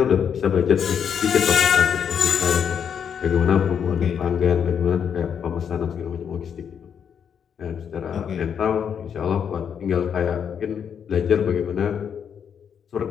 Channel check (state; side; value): quieter; right; 7.7 dB